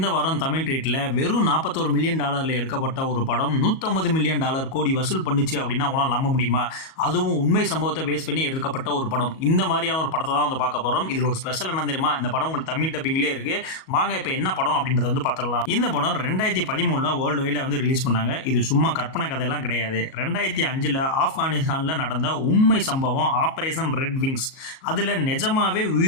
வாரம் தமிழ் ட்ரீட்டில் வெறும் $41 மில்லியன் எடுக்கப்பட்ட ஒரு படம் $150 மில்லியன் கோடி வசூல் பண்ணுச்சு அப்படின்னா உங்களால் நம்ப முடியுமா? அதுவும் உண்மை சம்பவத்தை பேஸ் பண்ணி எடுக்கப்பட்ட ஒரு படம். இந்த மாதிரியான ஒரு படத்தை தான் வந்து பார்க்க போகிறோம். இதில் ஒரு ஸ்பெஷல் என்ன தெரியுமா? இந்த படம் உங்களுக்கு தமிழ் டப்பிங்லேயே இருக்குது. வாங்க இப்போ என்ன படம் அப்படின்றத வந்து பார்த்துடலாம். இந்த படம் 2013 வேர்ல்டு வைடில் வந்து ரிலீஸ் பண்ணாங்க. இது சும்மா கற்பனை கதையெல்லாம் கிடையாது. 2005 ஆப்கானிஸ்தானில் நடந்த உண்மை சம்பவம் ஆபரேஷன் ரெட் விங்ஸ். அதில் நிஜமாவே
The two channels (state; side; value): late; right; 37 ms